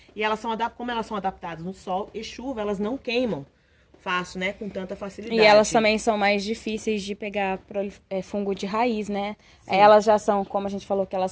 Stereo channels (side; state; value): both; identical; correlation 1.00